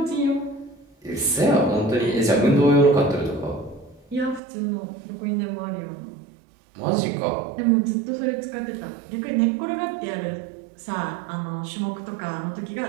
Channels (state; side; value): drops out; left; at 4.4 s